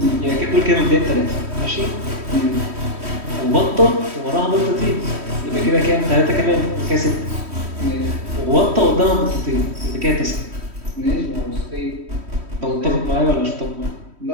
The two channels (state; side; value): late; left; 3.1 ms